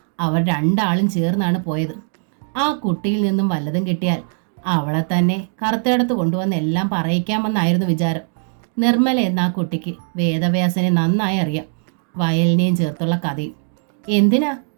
അവർ രണ്ടാളും ചേർന്നാണ് പോയത്. ആ കുട്ടിയിൽ നിന്നും വല്ലതും കിട്ടിയാൽ അവളെ തന്നെ കറുത്തേടത്ത് കൊണ്ടുവന്ന് എല്ലാം പറയിക്കാമെന്നായിരുന്നു വിചാരം. നിർമ്മല എന്ന ആ കുട്ടിക്ക് വേദവ്യാസനെ നന്നായി അറിയാം. വയലിനെയും ചേർത്തുള്ള കഥയും. എന്തിനാ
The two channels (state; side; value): silent; left; 56 dB below the other